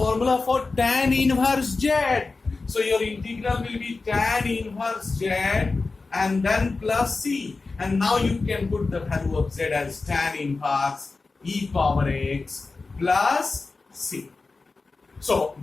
for tan inverse z. So your integral will be tan inverse z and then plus c, and now you can put the value of z as tan inverse e power x plus c. So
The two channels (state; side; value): quieter; right; 3.9 dB